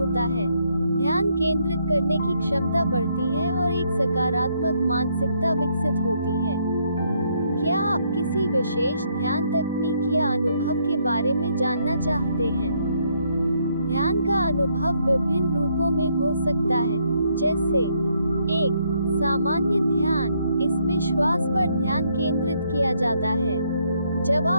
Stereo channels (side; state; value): both; inverted; correlation -0.72